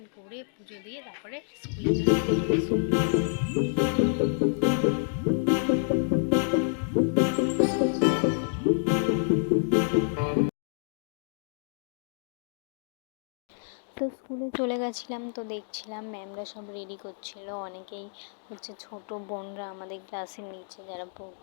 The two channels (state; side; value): silent; right; digital silence